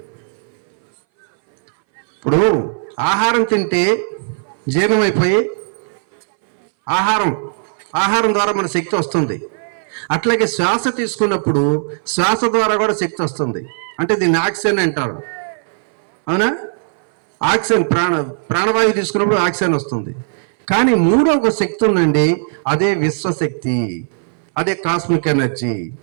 ఇప్పుడు ఆహారం తింటే జీర్ణమైపోయి ఆహారం ద్వారా మన శక్తి వస్తుంది. అట్లాగే శ్వాస తీసుకున్నప్పుడు శ్వాస ద్వారా కూడా శక్తి వస్తుంది. అంటే దీన్ని ఆక్సిజన్ అంటారు. అవునా? ఆక్సిజన్ ప్రాణవాయువు తీసుకున్నప్పుడు ఆక్సిజన్ వస్తుంది. కానీ మూడో ఒక శక్తి ఉందండి, అదే విశ్వశక్తి, అదే కాస్మిక్ ఎనర్జీ.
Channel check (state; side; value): silent; left; 62 dB below the other